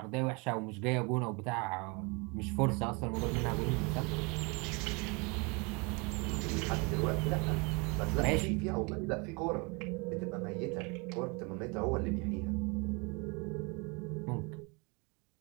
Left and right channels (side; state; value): left; quieter; 30.1 dB